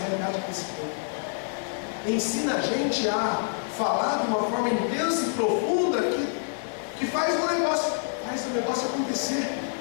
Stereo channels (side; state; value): right; silent; digital silence